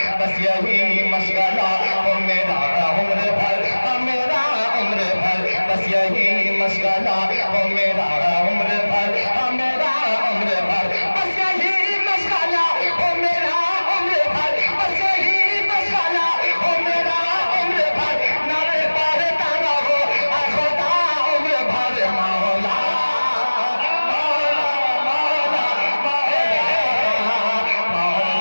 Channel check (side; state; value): both; inverted; correlation -1.00